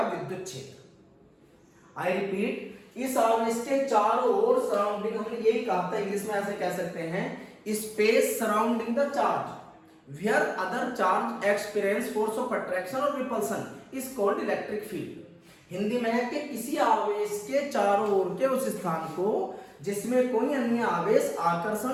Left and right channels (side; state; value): both; identical; correlation 1.00